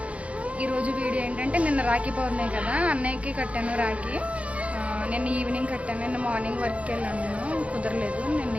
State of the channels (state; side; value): late; left; 0.064 ms